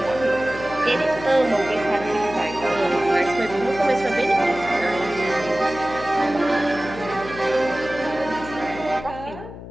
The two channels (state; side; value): noise; left; hum, 13 dB below the sound